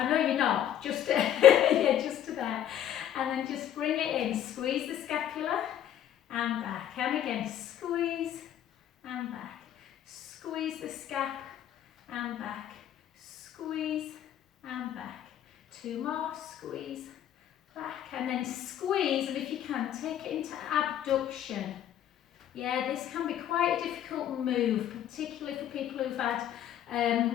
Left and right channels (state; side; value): quieter; right; 10.9 dB